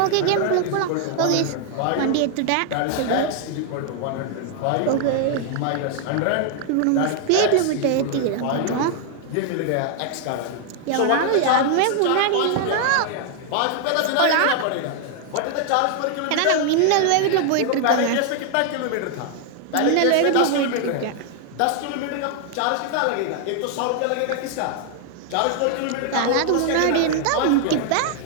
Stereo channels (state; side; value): different; both; correlation 0.00